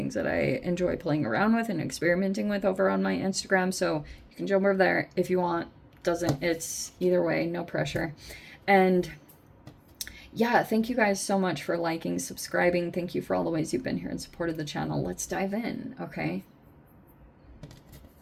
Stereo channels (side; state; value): both; identical; correlation 1.00